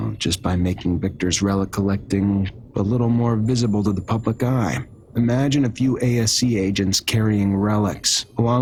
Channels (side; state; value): both; identical; correlation 1.00